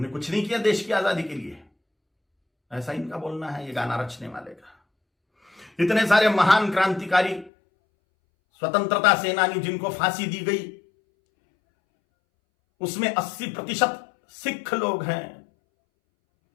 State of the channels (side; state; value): right; drops out; at 7.5 s